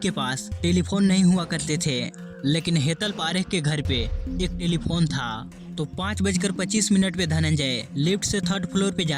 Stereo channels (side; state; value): both; identical; correlation 1.00